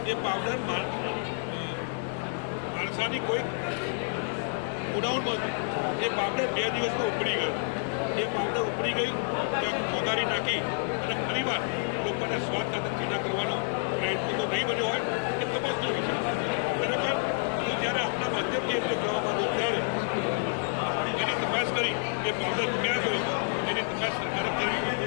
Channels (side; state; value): right; silent; 58 dB below the other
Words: એ પાવડર માણસાની કોઈ ઉડાઉન નહોતી. એ પાવડર 2 દિવસમાં ઉપડી ગયો. એ પાવડર ઉપડી ગઈ ત્યાં મોદારી નાખી અને ફરીવાર લોકોને સ્વાદ સાથે ચીના કરવાનો પ્રયત્ન તો નહીં બન્યો હોય એ તપાસનો વિષય છે. ખરેખર હું જ્યારે આપણા માધ્યમથી એમને કહેવા માંગુ ત્યારે એની તપાસ કરી એ પાવડર ક્યાં ગયો એની તપાસ સરકારે કરવી